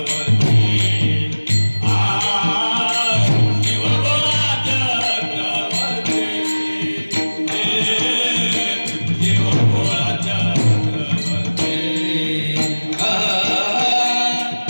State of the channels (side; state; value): both; inverted; correlation -1.00